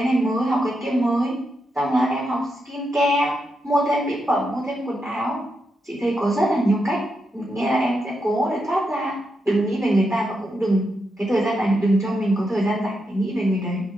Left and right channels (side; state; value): both; normal; correlation 0.84